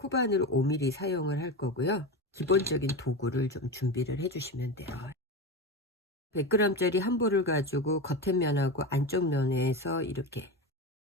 5mm 사용을 할 거고요. 기본적인 도구를 좀 준비를 해 주시면 돼요. 100g짜리 한 볼을 가지고 겉에 면하고 안쪽 면에서 이렇게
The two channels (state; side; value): normal; both; correlation 0.21